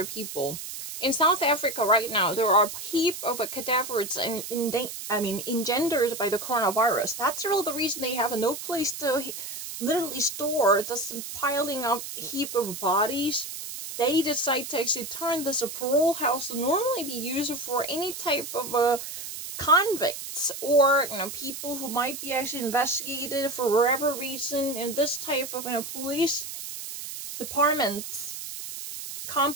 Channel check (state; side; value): noise; right; hiss, 8 dB below the sound